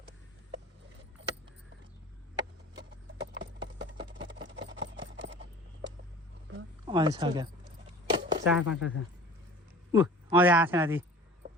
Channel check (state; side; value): normal; both; correlation 0.42